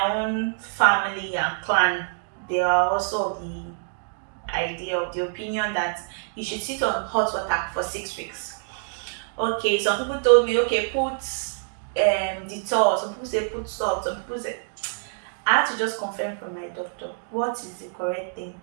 own family and clan, they are also of the idea, of the opinion that you should sit on hot water for 6 weeks. Okay, some people told me, okay, put Dettol, some people say put salt, some people say. I had to just confirm from my doctor what is the correct thing.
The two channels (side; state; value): left; silent; digital silence